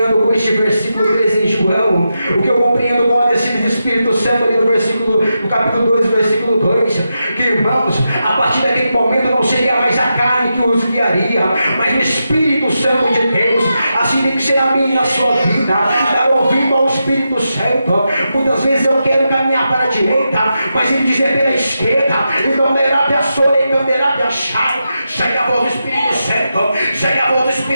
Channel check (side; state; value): both; inverted; correlation -0.87